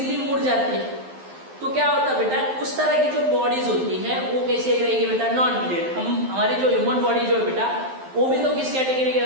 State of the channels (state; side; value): late; left; 11 ms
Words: मुड़ जाती है। तो क्या होता है बेटा, उस तरह की जो बॉडीज होती है वो कैसे रहेगी बेटा, नॉन रिजिड। हमारी जो ह्यूमन बॉडी जो है बेटा, वो भी तो किस कैटेगरी के